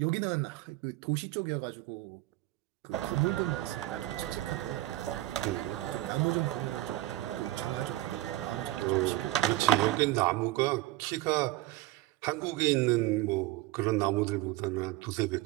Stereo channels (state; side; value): quieter; left; 16.7 dB